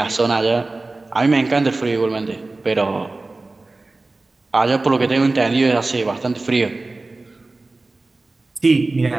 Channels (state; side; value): quieter; left; 3.2 dB